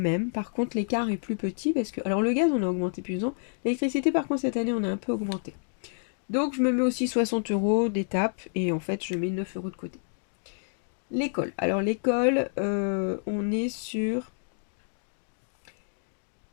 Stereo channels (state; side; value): silent; right; digital silence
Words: Par contre, l'écart est plus petit parce que... Alors, le gaz, on a augmenté plus ans. L'électricité, par contre, cette année, on a un peu augmenté. Donc, je me mets aussi 60 euros d'étape et en fait, je mets 9 euros de côté. L'école. Alors, l'école, on est sur...